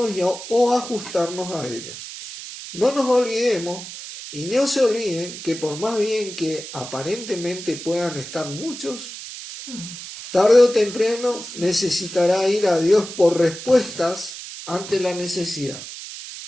o ajustarnos a ella. No nos olvidemos y no se olviden que por más bien que aparentemente puedan estar muchos, tarde o temprano necesitará ir a Dios por respuestas ante la necesidad.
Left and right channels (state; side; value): noise; right; hiss, 11 dB below the sound